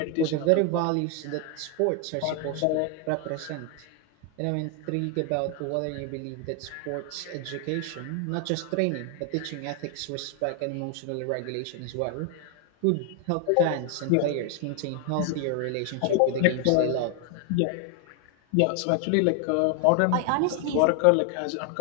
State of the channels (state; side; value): different; both; correlation 0.01